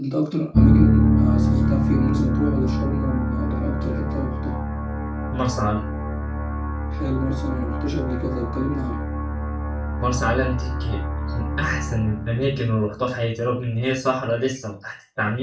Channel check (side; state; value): both; identical; correlation 1.00